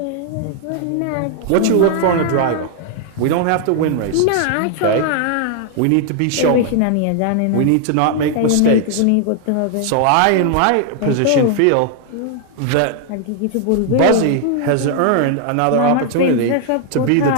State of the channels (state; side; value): different; both; correlation 0.00